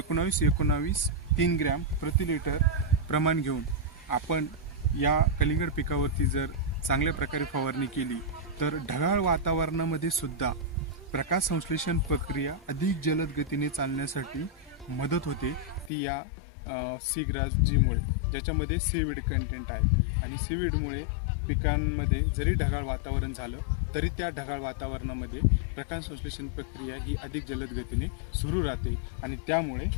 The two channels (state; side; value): drops out; right; at 15.9 s